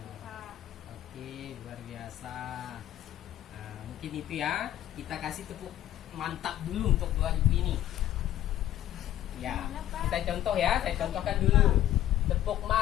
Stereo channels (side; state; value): right; quieter; 12.8 dB